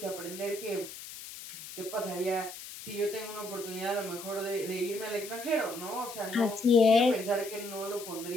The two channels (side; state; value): left; noise; hiss, 12 dB below the sound